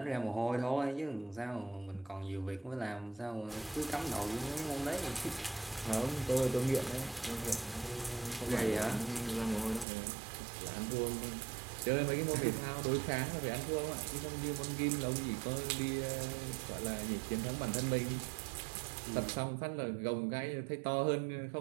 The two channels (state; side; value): drops out; left; at 9.9 s